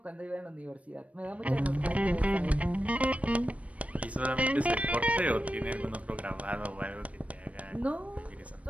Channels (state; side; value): late; left; 0.065 ms